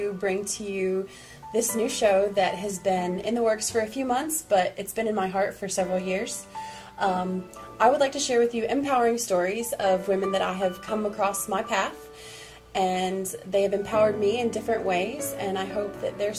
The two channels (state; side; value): identical; both; correlation 1.00